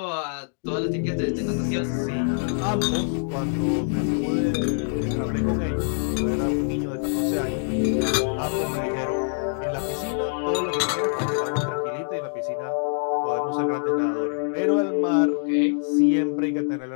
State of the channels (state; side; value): silent; right; digital silence